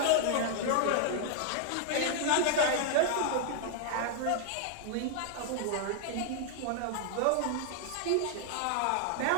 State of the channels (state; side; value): different; both; correlation 0.00